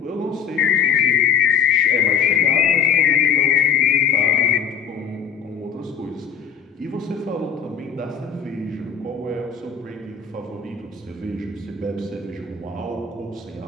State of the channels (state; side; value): quieter; right; 7.2 dB